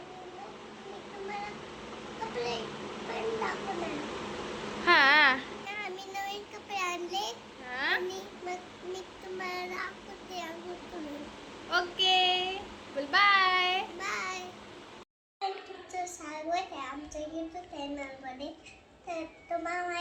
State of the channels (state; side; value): identical; both; correlation 1.00